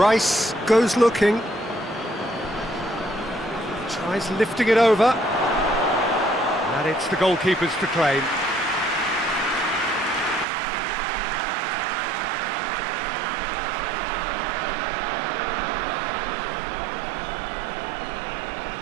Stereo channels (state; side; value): drops out; left; at 10.5 s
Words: goes looking. Tries lifting it over. And it's the goalkeepers to claim.